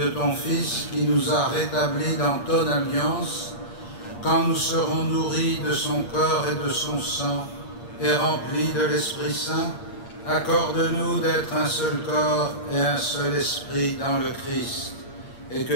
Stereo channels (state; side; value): late; right; 8.6 ms